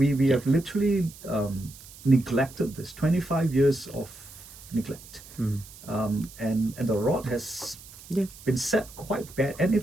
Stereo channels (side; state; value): right; noise; hiss, 19 dB below the sound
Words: have literally neglected this. 25 years of neglect. And the rod has been set quite bad,